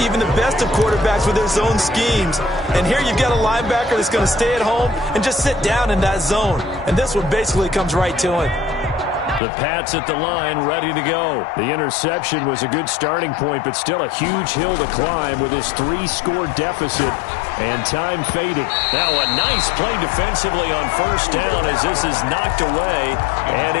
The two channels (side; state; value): right; drops out; at 9.4 s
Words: the best of quarterbacks with their zone schemes. And here you've got a linebacker that's going to stay at home and just sit down in that zone. And this one basically comes right to him. The Pats at the line, ready to go. The interception was a good starting point, but still a huge hill to climb with his 3-score deficit. And time fading. Now a nice play defensively on first down as this is knocked away and